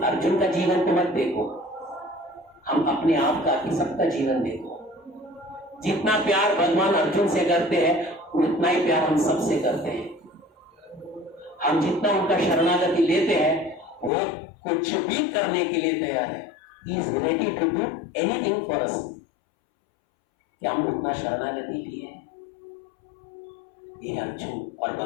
अर्जुन का जीवन तो मत देखो, हम अपने आप का ही सबका जीवन देखो। जितना प्यार भगवान अर्जुन से करते हैं उतना ही प्यार हम सबसे करते हैं। हम जितना उनका शरणागति लेते हैं वो कुछ भी करने के लिए तैयार है। He is ready to do anything for us। क्या हम उतना शरणागति लिए? ये अर्जुन और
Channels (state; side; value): drops out; right; at 14.1 s